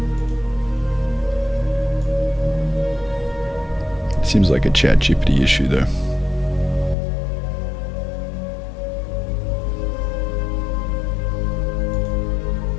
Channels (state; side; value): drops out; right; at 7.0 s